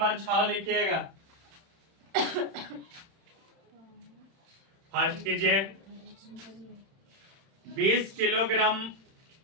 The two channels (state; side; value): late; left; 31 ms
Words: 6 लिखिएगा। फर्स्ट कीजिए 20